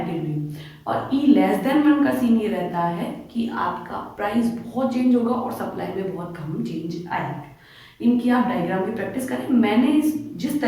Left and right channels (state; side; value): identical; both; correlation 1.00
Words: और ई लेस देन 1 का सीन ये रहता है कि आपका प्राइस बहुत चेंज होगा और सप्लाई में बहुत कम चेंज आएगा। इनकी आप डायग्राम की प्रैक्टिस करें। मैंने जिस